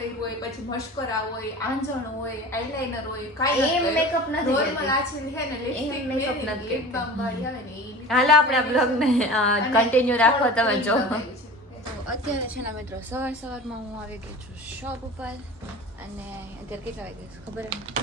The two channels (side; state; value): both; normal; correlation 0.37